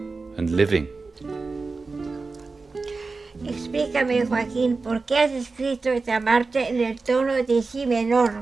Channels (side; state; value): left; quieter; 4.0 dB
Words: and living. Explícame, Joaquín, ¿por qué has escrito esta marcha en el tono de si menor?